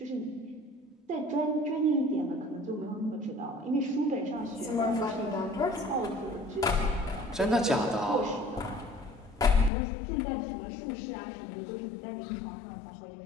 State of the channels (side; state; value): right; drops out; at 9.7 s